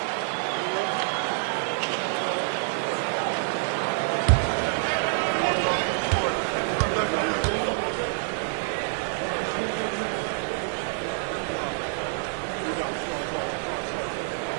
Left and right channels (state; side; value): silent; left; 60 dB below the other